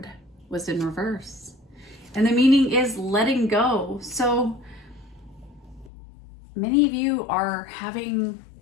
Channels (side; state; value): right; drops out; at 5.9 s